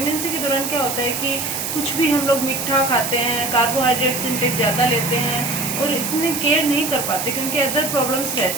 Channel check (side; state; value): right; noise; hiss, 3 dB below the sound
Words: के दौरान क्या होता है कि कुछ भी हम लोग मीठा खाते हैं, कार्बोहाइड्रेट्स इंटेक ज़्यादा लेते हैं और इतने केयर नहीं कर पाते क्योंकि अदर प्रॉब्लम्स